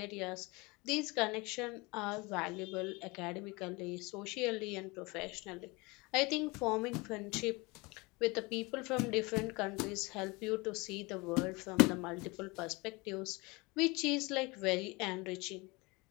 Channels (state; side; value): quieter; right; 25.5 dB